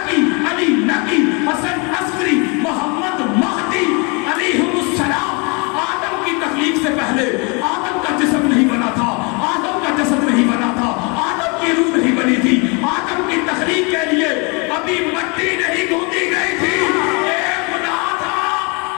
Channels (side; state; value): right; quieter; 31.4 dB